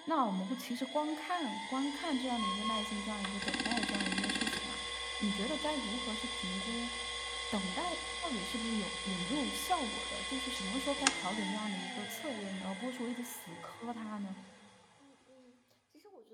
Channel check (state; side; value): identical; both; correlation 1.00